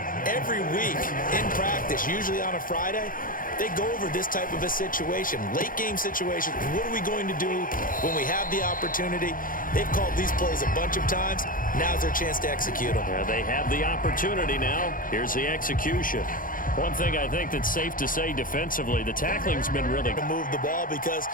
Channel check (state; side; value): late; right; 0.40 ms